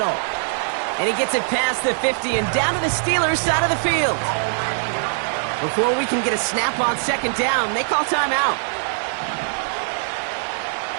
And he gets it past the 50 and down to the Steelers' side of the field. Before we can get a snap on 2nd down, they call timeout.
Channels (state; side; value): silent; left; 60 dB below the other